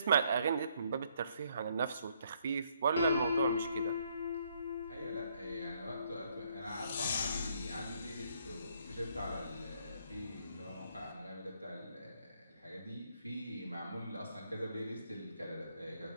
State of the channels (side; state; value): both; inverted; correlation -0.70